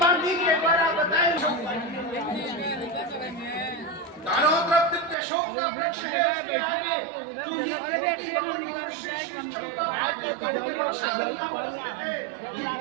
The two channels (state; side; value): drops out; left; at 5.2 s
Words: के द्वारा बताए चारों तरफ दिव्य अशोक का वृक्ष है। उसके आगे जूही देवी और श्री चंपा आदि का वृक्ष बना हुआ है।